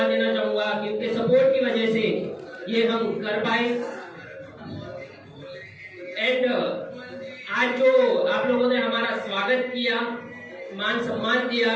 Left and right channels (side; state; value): both; identical; correlation 1.00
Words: देना चाहूँगा कि उनके सपोर्ट की वजह से ये हम कर पाए। एंड आज जो आप लोगों ने हमारा स्वागत किया, मान सम्मान दिया,